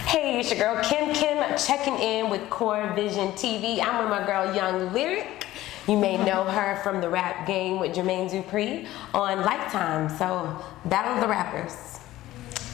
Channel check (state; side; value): quieter; right; 15.6 dB